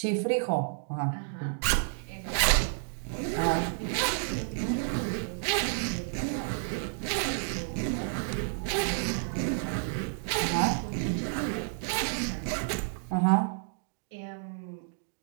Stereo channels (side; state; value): left; silent; digital silence